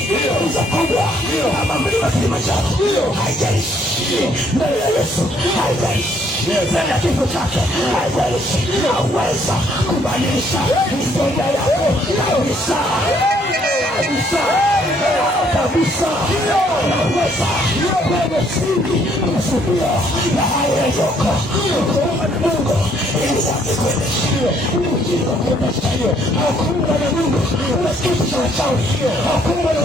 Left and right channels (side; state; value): both; normal; correlation 0.66